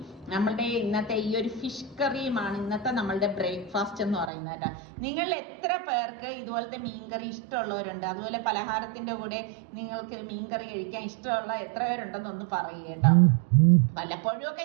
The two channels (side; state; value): left; drops out; at 4.3 s